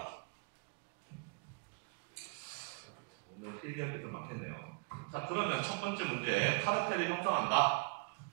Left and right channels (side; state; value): left; quieter; 35.4 dB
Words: 거죠. 오늘 필기할 게 좀 많겠네요. 자, 그러면 첫 번째 문제 카르텔을 형성한다.